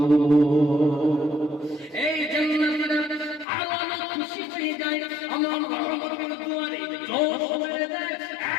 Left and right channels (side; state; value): right; drops out; at 3.5 s